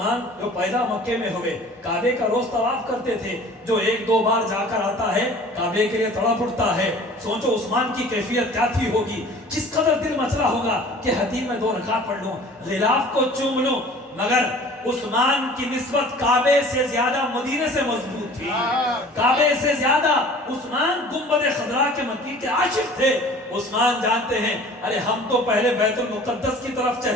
جو پیدا مکے میں ہوئے، کعبے کا روز طواف کرتے تھے، جو ایک دو بار جا کر آتا ہے کعبے کے لیے تڑپ اٹھتا ہے۔ سوچو عثمان کی کیفیت کیا تھی ہوگی، کس قدر دل مچلا ہوگا کہ حتیم میں 2 رکعت پڑھ لوں، غلاف کو چوم لوں۔ مگر عثمان کی نسبت کعبے سے زیادہ مدینے سے مضبوط تھی، کعبے سے زیادہ عثمان گنبد خضرا کے مکی کے عاشق تھے۔ عثمان جانتے ہیں ارے ہم تو پہلے بیت المقدس کی طرف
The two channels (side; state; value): both; normal; correlation 0.46